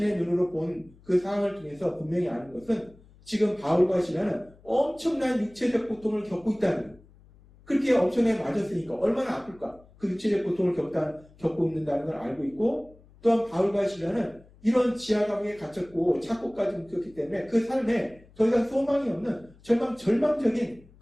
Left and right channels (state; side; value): noise; left; hum, 26 dB below the sound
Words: 눈으로 본 그 상황을 통해서 분명히 아는 것은 지금 바울과 신라는 엄청난 육체적 고통을 겪고 있다는 거예요. 그렇게 엄청나게 맞았으니까 얼마나 아플까? 그 육체적 고통을 겪고 있는다는 걸 알고 있고 또한 바울과 신라는 이런 지하 감옥에 갇혔고 착고까지 묶였기 때문에 그 삶에 더 이상 소망이 없는 절망적인